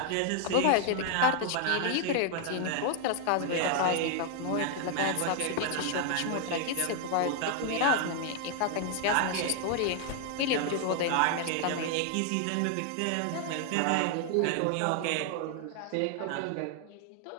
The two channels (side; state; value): both; different; correlation 0.00